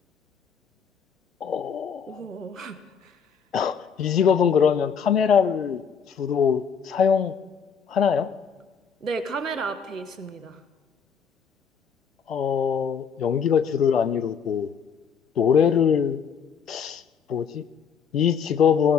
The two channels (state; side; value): quieter; right; 6.7 dB